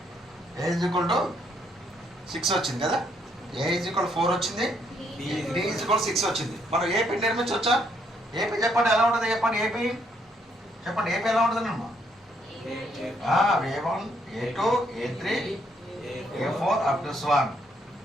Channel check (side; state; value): both; normal; correlation 0.71